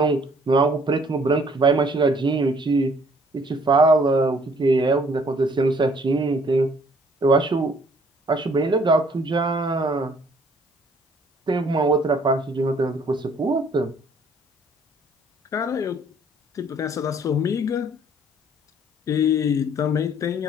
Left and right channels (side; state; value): both; normal; correlation 0.60